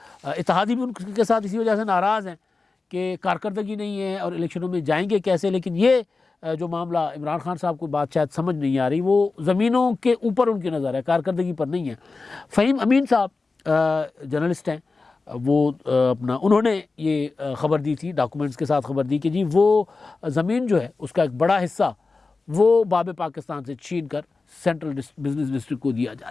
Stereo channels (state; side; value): quieter; right; 3.9 dB